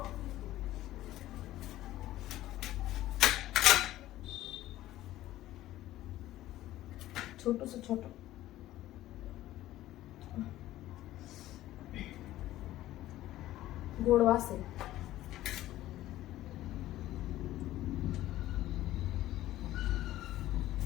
छोटूस छोटं गोड वास आहे.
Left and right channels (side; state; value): right; quieter; 14.9 dB